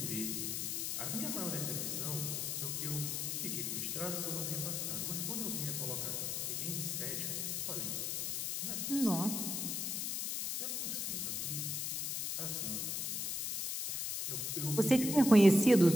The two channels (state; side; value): noise; left; hiss, 1 dB below the sound